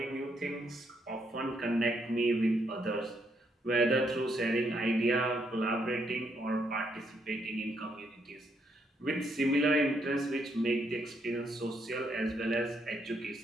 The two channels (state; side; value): normal; both; correlation 0.75